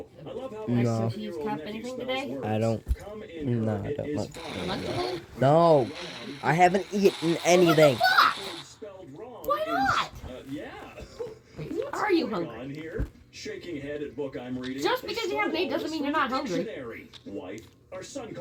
I love how No. my 7-year-old nephew spells words. I don't. Come in No, her, I it don't is like fine. Lunchable? No, I haven't eaten anything. Spelled wrong Why not? yeah. Are you Going hungry? on here? Shaking head at book I'm reading. Just because you haven't eaten doesn't mean you're not hungry. Dictionary. Wife, our son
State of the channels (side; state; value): both; identical; correlation 1.00